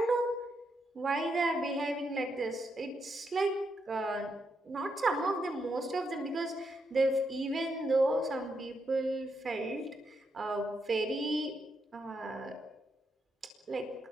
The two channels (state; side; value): normal; both; correlation 0.81